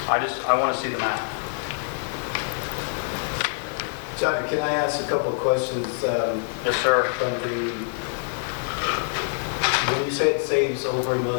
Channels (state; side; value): silent; right; digital silence